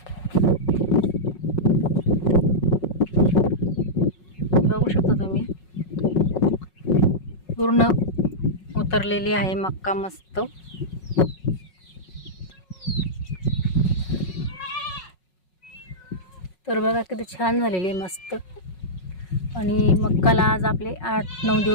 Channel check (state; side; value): late; right; 5.5 ms